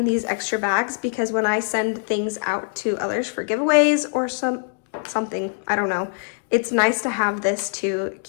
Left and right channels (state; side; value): silent; right; 63 dB below the other